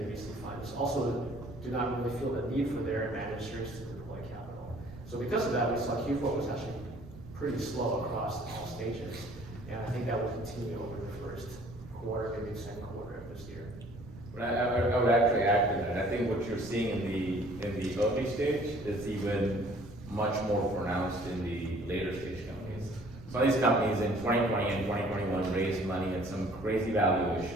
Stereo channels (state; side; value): noise; right; rumble, 16 dB below the sound